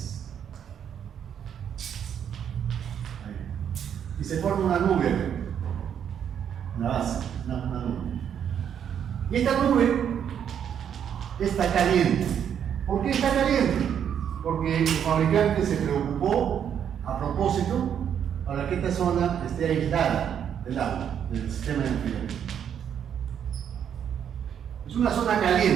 Ahí. Y se forma una nube, una base, una nube. Y esta nube está caliente. ¿Por qué está caliente? Porque el fabricante se preocupó a propósito para que esta zona esté aislada del agua, del sistema de enfriamiento. Es una zona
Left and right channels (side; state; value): left; quieter; 8.7 dB